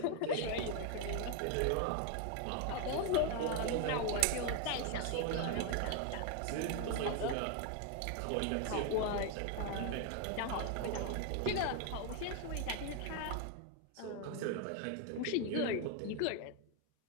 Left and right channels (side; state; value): both; different; correlation 0.01